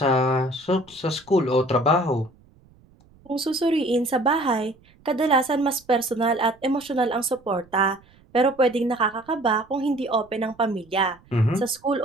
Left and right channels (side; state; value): right; noise; rumble, 29 dB below the sound